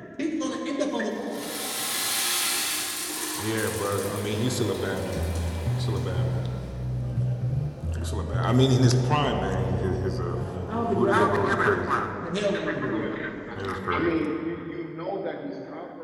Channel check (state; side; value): identical; both; correlation 1.00